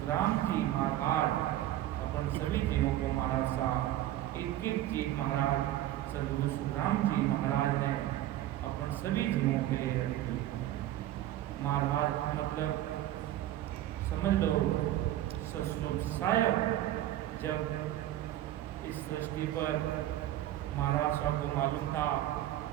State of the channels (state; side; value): quieter; left; 13.5 dB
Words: जी महाराज अपन सभी जीवों को महाराज साहब एक एक चीज महाराज सद्गुरु सुखराम जी महाराज ने अपन सभी जीवों के लिए रखी। महाराज मतलब समझ लो ससुर साहब जब इस सृष्टि पर महाराज साहब को मालूम था